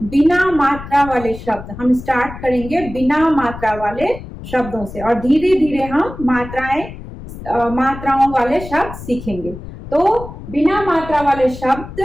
बिना मात्रा वाले शब्द। हम स्टार्ट करेंगे बिना मात्रा वाले शब्दों से, और धीरे धीरे हम मात्राओं वाले शब्द सीखेंगे। तो बिना मात्रा वाले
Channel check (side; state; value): left; noise; rumble, 13 dB below the sound